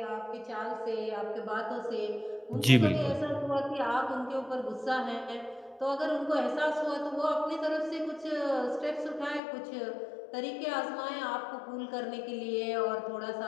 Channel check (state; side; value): drops out; right; at 9.4 s